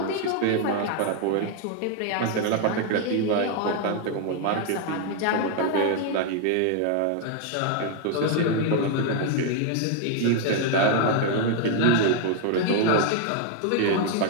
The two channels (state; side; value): different; both; correlation 0.00